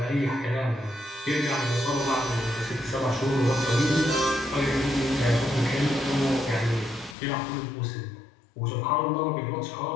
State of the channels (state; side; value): drops out; right; at 7.2 s